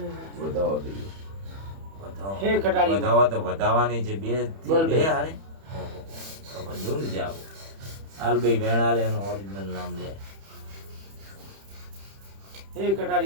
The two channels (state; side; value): late; left; 31 ms